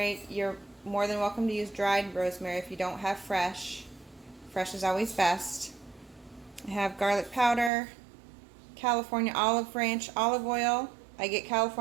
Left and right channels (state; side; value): drops out; left; at 7.7 s